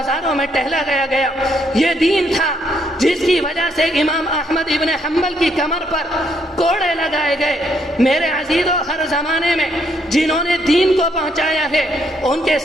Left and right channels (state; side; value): normal; both; correlation 0.72